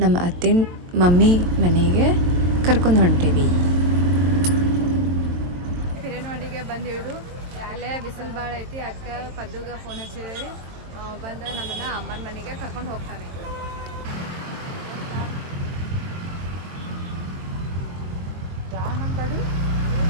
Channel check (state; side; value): late; left; 22 ms